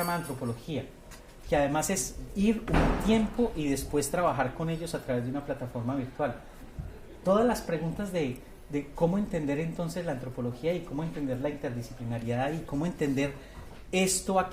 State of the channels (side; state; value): both; identical; correlation 1.00